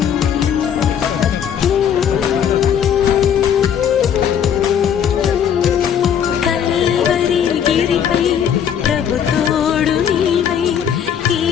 కల్వరి గిరిపై ప్రభు తోడు నీవై ఈ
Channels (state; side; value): quieter; right; 8.6 dB